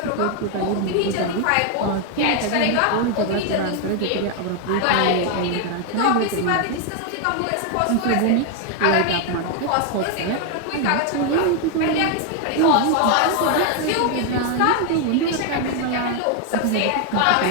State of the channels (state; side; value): different; both; correlation 0.01